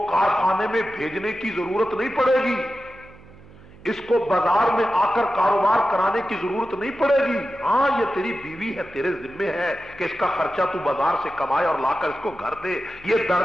کارخانے میں بھیجنے کی ضرورت نہیں پڑے گی، اس کو بازار میں آ کر کاروبار کرانے کی ضرورت نہیں پڑے گی. ہاں یہ تیری بیوی ہے، تیرے ذمے ہے کہ اس کا خرچہ تو بازار سے کمائے اور لا کر اس کو گھر دے. یہ در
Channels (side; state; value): right; noise; hum, 22 dB below the sound